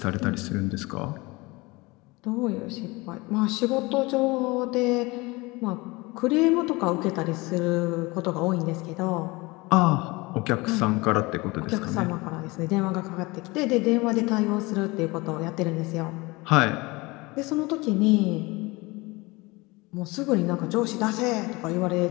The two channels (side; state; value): right; quieter; 23.6 dB